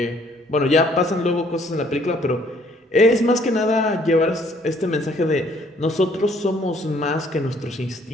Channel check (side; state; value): both; normal; correlation 0.62